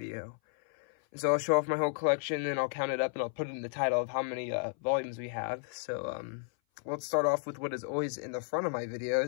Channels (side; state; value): right; silent; 56 dB below the other